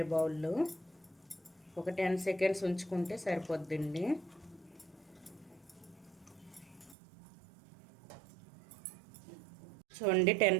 బౌల్లో. ఒక 10 సెకండ్స్ ఉంచుకుంటే సరిపోద్దండి. చూడండి, 10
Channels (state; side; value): drops out; left; at 7.0 s